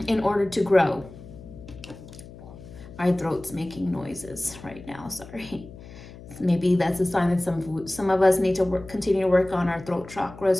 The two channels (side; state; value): left; noise; hum, 17 dB below the sound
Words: order to grow. My throat's making noises right now, sorry. Maybe that's a sign that some of us need to continue to work on our throat chakras